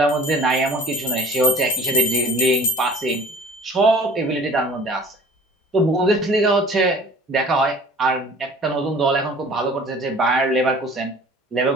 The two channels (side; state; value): both; normal; correlation 0.47